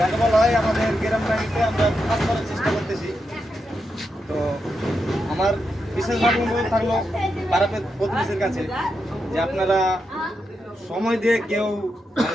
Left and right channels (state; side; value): normal; both; correlation 0.85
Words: বলা হয় আমাদের গ্রাম বাড়িতে আমরা কাজ করার চেষ্টা করতেছি। তো আমার বিশেষভাবে অনুরোধ থাকলো পাড়াপের প্রতিবেশীর কাছে যে আপনারা সময় দিয়ে, কেউ